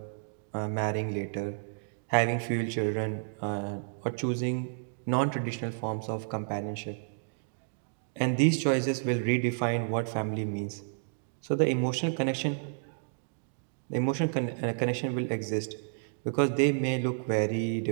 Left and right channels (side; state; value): left; silent; digital silence